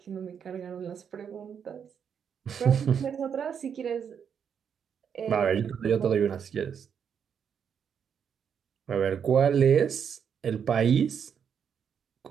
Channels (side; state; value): left; quieter; 7.5 dB